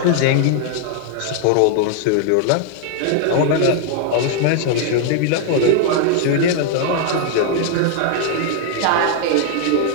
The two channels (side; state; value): both; different; correlation 0.00